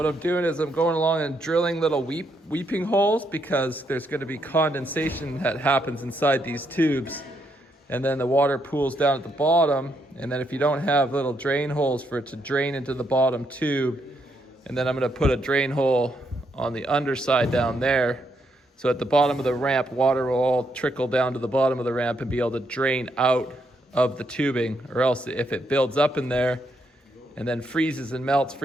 I'm doing is I'm going along and drilling little weeping holes because there's going to be condensation that happens inside these tubes. And then the water pools down at the bottom. And then if you don't have little drain holes for it to drain into the bottom tube, and then I'm going to put a drain hole on the underside down there. So at the bottom of the ramp, water will all trickle down to the bottom of the ramp and be able to drain out of the tubing. Or else if it builds up in there and then freezes and melts,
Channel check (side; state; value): both; normal; correlation 0.77